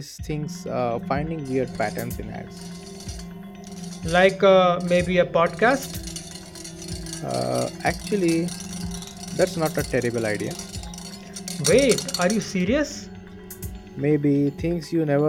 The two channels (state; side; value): identical; both; correlation 1.00